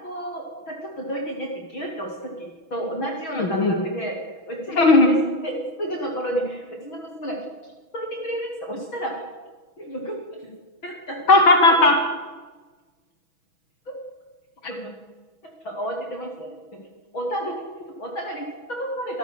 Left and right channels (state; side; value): late; right; 6.2 ms